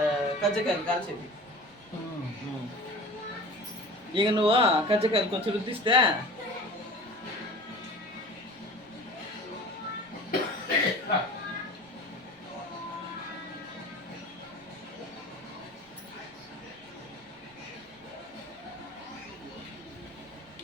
కజ్జకాయలు కాల్చేది. ఇక నువ్వు కజ్జకాయలు కొంచెం రుద్దిస్తే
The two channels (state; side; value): noise; right; rumble, 28 dB below the sound